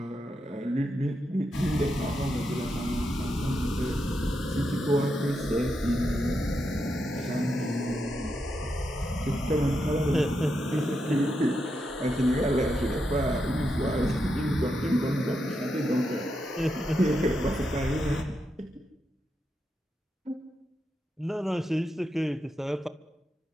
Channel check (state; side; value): normal; both; correlation 0.84